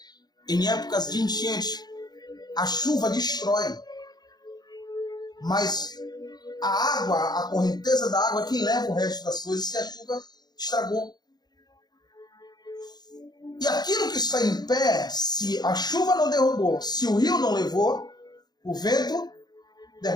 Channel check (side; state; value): right; late; 0.20 ms